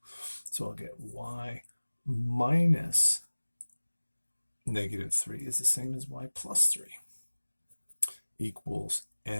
So I'll get y minus -3 is the same as y plus 3 equals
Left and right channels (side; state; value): both; inverted; correlation -1.00